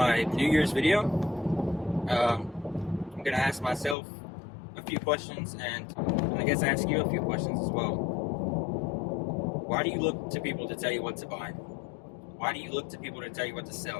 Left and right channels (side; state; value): right; drops out; at 4.0 s